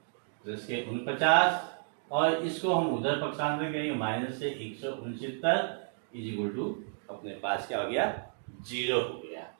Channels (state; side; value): silent; left; digital silence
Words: प्लस के 49, और इसको हम उधर पक्षांतर करेंगे, माइनस से 169 इज इक्वल टू अपने पास क्या हो गया? 0 हो गया।